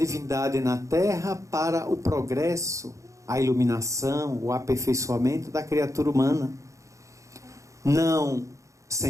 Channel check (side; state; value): left; late; 0.15 ms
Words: na Terra para o progresso, a iluminação, o aperfeiçoamento da criatura humana. Não,